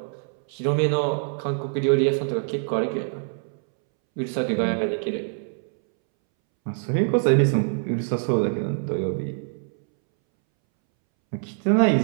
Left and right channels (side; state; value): left; silent; 62 dB below the other